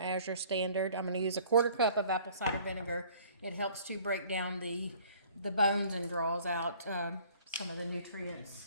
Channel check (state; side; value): inverted; both; correlation -0.54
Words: Standard. I'm going to use a 1/4 cup of apple cider vinegar. It helps to break down the bones and draws out some of the nutrients.